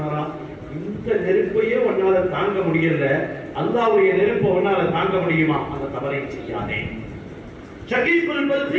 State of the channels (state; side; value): identical; both; correlation 1.00